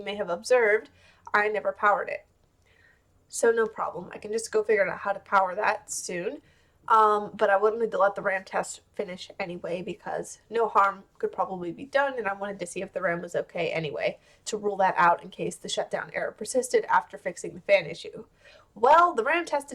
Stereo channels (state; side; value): identical; both; correlation 1.00